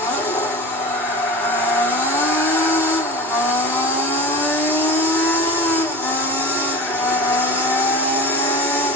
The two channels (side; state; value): both; normal; correlation 0.33